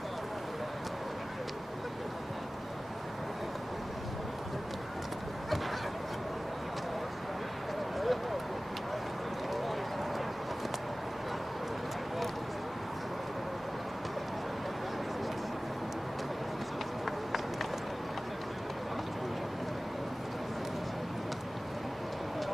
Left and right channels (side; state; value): both; normal; correlation 0.97